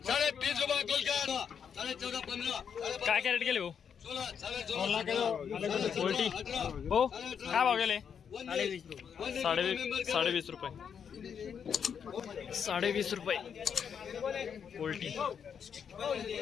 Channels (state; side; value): quieter; right; 7.4 dB